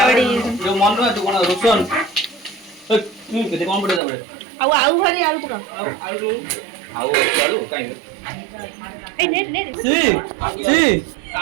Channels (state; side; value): drops out; left; at 4.0 s